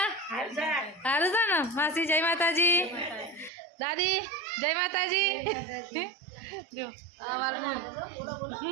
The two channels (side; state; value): left; drops out; at 3.5 s